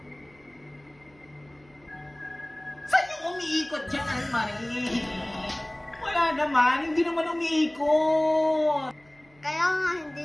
Saan yung umiikot dyan, Anne-Marie? Wala naman. Hindi naman umiikot. Kaya nga, hindi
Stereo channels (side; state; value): right; noise; hum, 30 dB below the sound